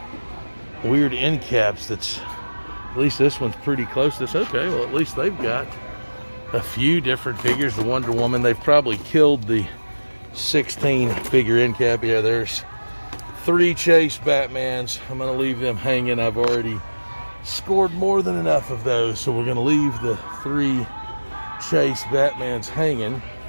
weird end caps. That's, at least this one's pretty close to this. Okay, well, at least they've got a few different figures. The Wonder Woman, they've probably killed the 16 figure end cap. Yeah, there's 3 Chase Batmans. I'm gonna leave them hanging. I've already scored more than enough of those, so we're gonna leave the 3 Chase Batmans hanging.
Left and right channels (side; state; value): both; inverted; correlation -1.00